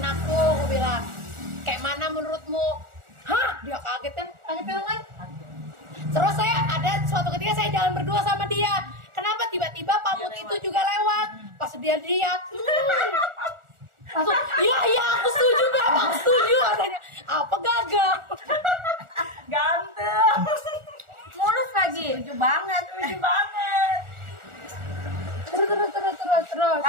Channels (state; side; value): late; left; 1.4 ms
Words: aku bilang. Kayak mana menurutmu? Hah? Dia kaget kan? Kan? Terus saya ada suatu ketika saya jalan berdua sama dia. Kenapa tiba-tiba Pamut itu juga lewat? Pas dia lihat, langsung, iya aku setuju Beb, aku setuju katanya. Apa gagal? Ganteng. Mulus lagi. Setuju banget. Lucu banget. Terus.